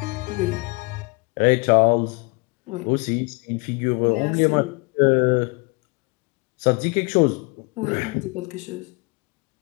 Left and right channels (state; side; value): quieter; right; 28.8 dB